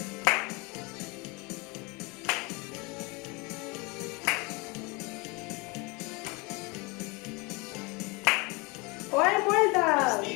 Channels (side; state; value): right; quieter; 27.3 dB